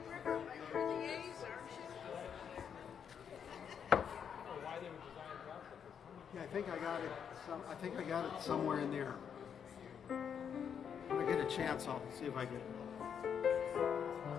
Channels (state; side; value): quieter; right; 7.7 dB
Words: River by the A's, aren't you? Yeah, I think I got it. I think I got it somewhere in there. When I get a chance, I'll see if I can.